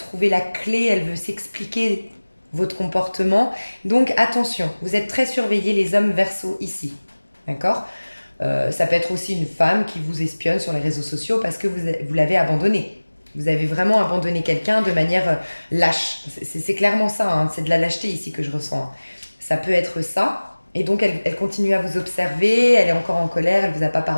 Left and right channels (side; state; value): both; inverted; correlation -1.00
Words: la clé, elle veut s'expliquer votre comportement. Donc attention, vous êtes très surveillés les hommes Verseaux ici, d'accord. Ça peut être aussi une femme qui vous espionne sur les réseaux sociaux parce que vous l'avez abandonné. Vous avez vraiment abandonné quelqu'un de manière lâche. C'est clairement ça, hein. C'est de la lâcheté ici que je ressens. Ça peut être ça. Et donc, elle continue à vous observer, elle est encore en colère, elle ne vous a pas